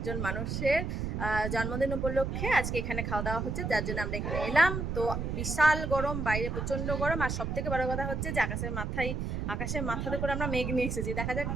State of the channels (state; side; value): noise; right; rumble, 2 dB below the sound